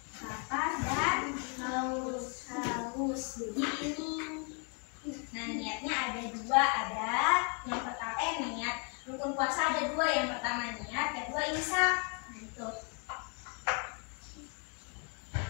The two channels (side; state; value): right; quieter; 38.9 dB